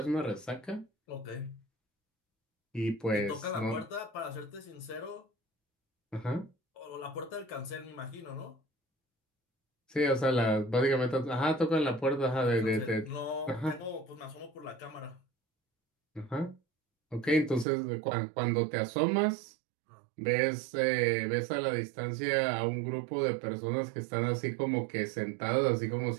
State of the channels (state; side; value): drops out; left; at 17.7 s